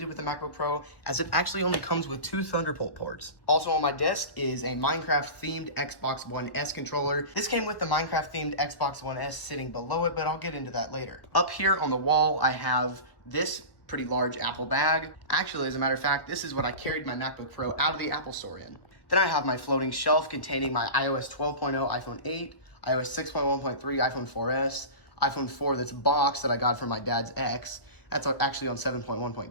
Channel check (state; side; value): late; right; 1.3 ms